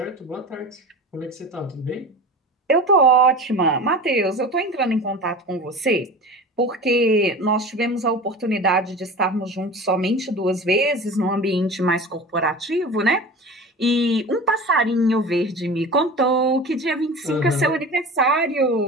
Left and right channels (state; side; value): normal; both; correlation 0.34